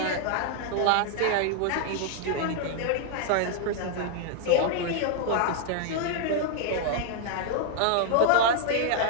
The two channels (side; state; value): both; different; correlation 0.00